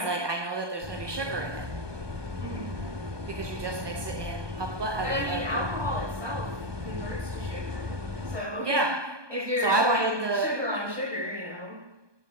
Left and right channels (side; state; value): left; late; 1.2 ms